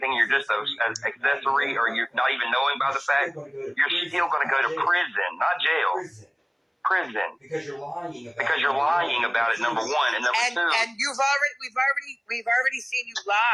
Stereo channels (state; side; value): identical; both; correlation 1.00